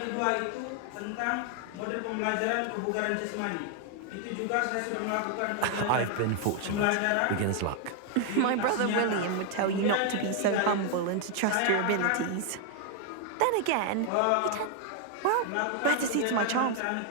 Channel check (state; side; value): different; both; correlation 0.00